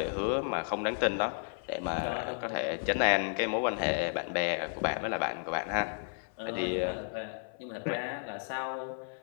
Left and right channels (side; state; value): right; silent; 56 dB below the other